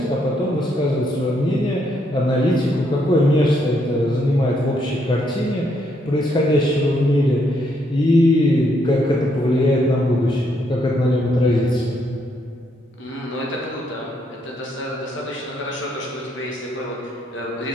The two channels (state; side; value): normal; both; correlation 0.74